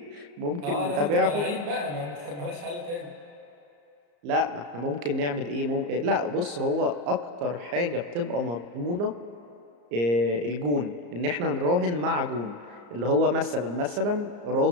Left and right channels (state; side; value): late; left; 34 ms